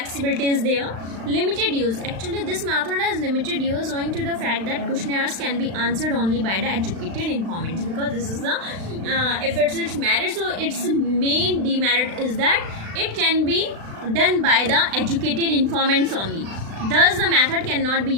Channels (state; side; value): late; left; 36 ms